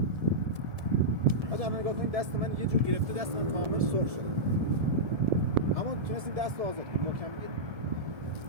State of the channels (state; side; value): late; left; 1.7 ms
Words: بچه الان نگاه کنید، دست من یه جور گرفته، دست من کامل سرخ شده. اما تونستیم دست رو آزاد کنیم. محکم بگیریم.